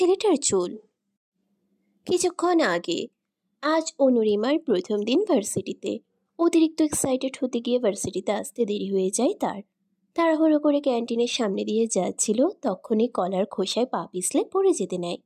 চুল। কিছুক্ষণ আগে আজ অনুরিমার প্রথম দিন ভার্সিটিতে। অতিরিক্ত এক্সাইটেড হতে গিয়ে ভার্সিটিতে আসতে দেরি হয়ে যায় তার। তাড়াহুড়ো করে ক্যান্টিনের সামনে দিয়ে যাচ্ছিল, তখনই কলার খোসায় পা পিছলে পড়ে যেতে নেয়।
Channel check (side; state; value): both; identical; correlation 1.00